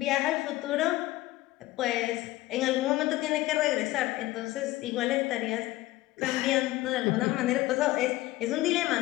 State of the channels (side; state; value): right; quieter; 17.5 dB